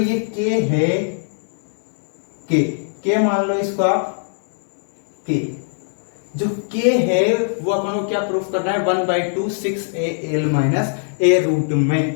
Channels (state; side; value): silent; right; digital silence